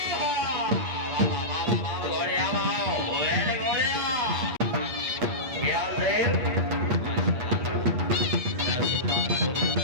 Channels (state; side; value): late; left; 8.8 ms